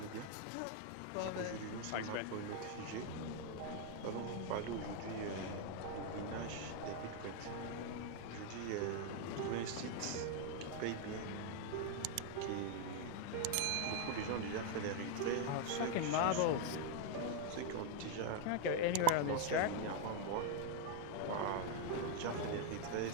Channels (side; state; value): both; different; correlation 0.01